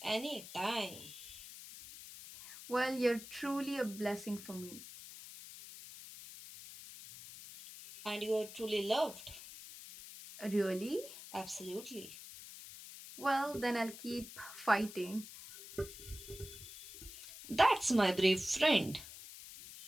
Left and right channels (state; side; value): noise; left; hiss, 14 dB below the sound